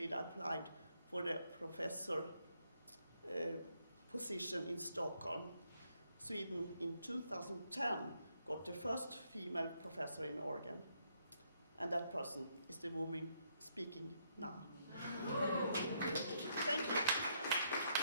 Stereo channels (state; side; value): inverted; both; correlation -0.74